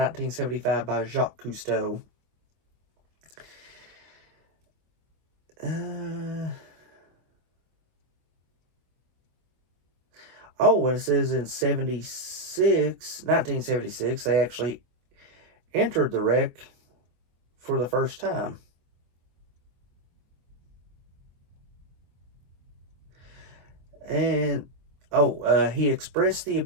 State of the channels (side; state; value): left; late; 24 ms